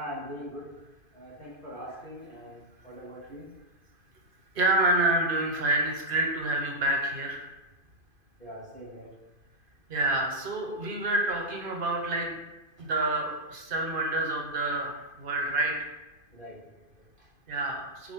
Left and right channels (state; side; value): late; left; 2.5 ms